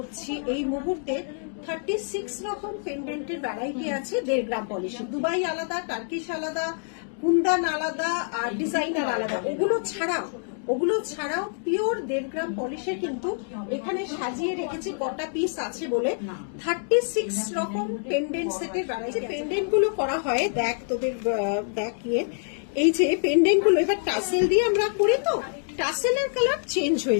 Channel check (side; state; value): right; silent; 61 dB below the other